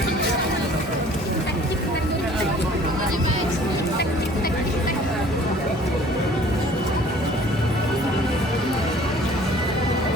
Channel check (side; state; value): both; normal; correlation 0.52